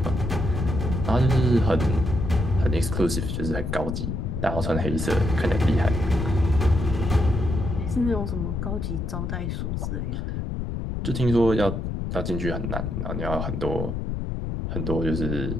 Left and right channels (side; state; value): left; noise; rumble, 3 dB below the sound